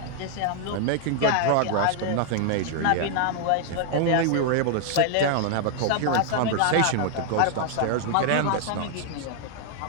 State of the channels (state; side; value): different; both; correlation -0.01